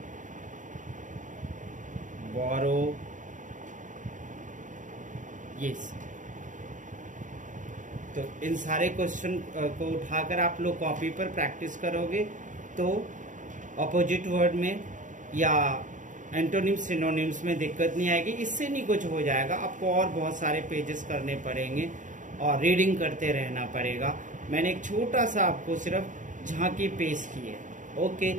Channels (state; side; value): late; left; 0.37 ms